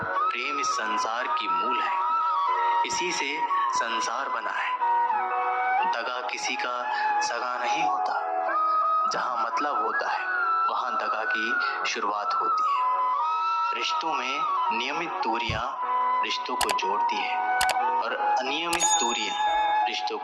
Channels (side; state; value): both; identical; correlation 1.00